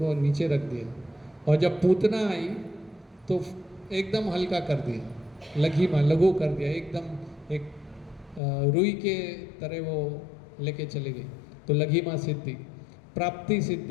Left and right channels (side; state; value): right; drops out; at 8.4 s